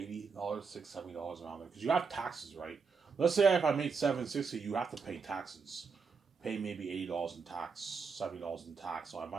$670 around there. Because you have taxes, right? Let's say if I made $760, you have to pay taxes. Pay maybe $80 in tax, $70 in tax. So I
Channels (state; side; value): quieter; left; 5.3 dB